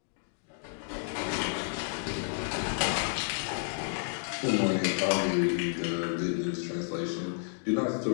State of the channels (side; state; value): right; silent; digital silence